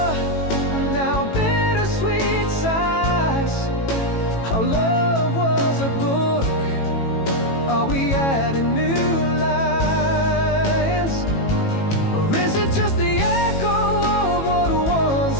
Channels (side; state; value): right; late; 18 ms